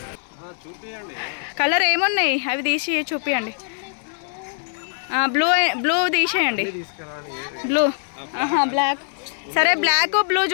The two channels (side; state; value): right; silent; digital silence